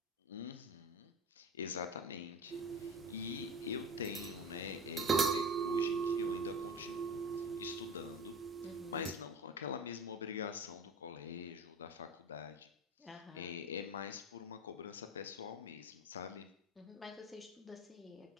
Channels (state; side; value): normal; both; correlation 0.34